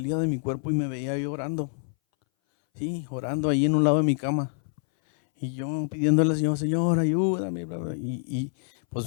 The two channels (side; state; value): right; silent; 60 dB below the other